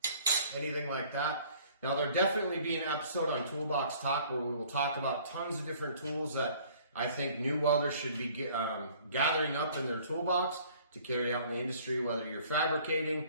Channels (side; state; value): both; inverted; correlation -0.54